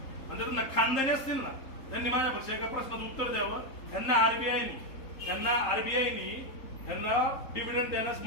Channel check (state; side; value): late; right; 3.8 ms